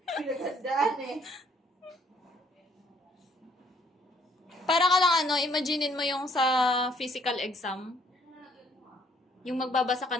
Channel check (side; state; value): both; normal; correlation 0.64